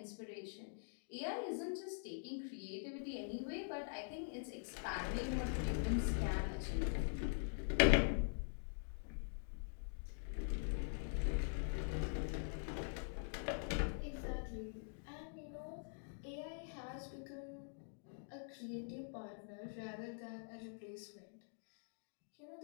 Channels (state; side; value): silent; right; digital silence